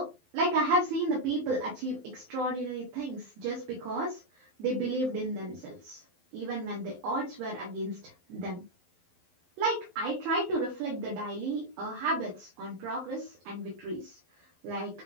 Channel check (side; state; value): left; late; 12 ms